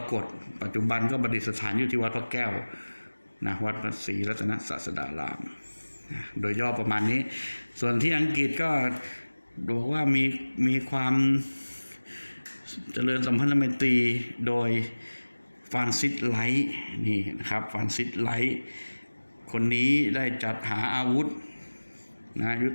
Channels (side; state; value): both; inverted; correlation -1.00